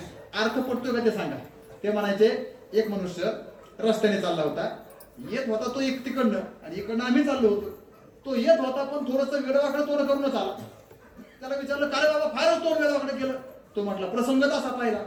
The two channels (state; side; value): identical; both; correlation 1.00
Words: अर्थ पडतोय का ते सांगा. ते म्हणायचे, एक मनुष्य रस्त्याने चालला होता, येत होता तो एक तिकडनं आणि इकडनं आम्ही चाललो होतो. तो येत होता पण थोडस वेडवाकडे तोंड करूनच आला. त्याला विचारलं, काय बाबा फारच तोंड वेडवाकडे केलं. तो म्हटला, प्रसंगच असा पाहिला,